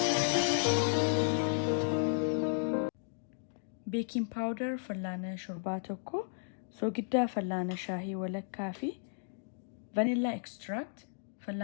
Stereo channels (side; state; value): right; silent; digital silence